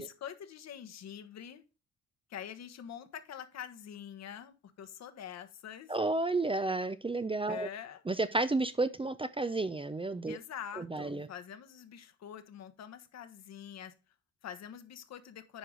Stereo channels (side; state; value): both; normal; correlation 0.53